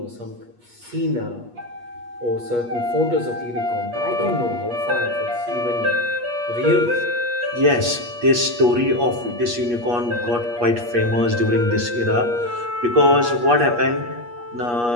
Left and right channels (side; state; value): left; late; 8.4 ms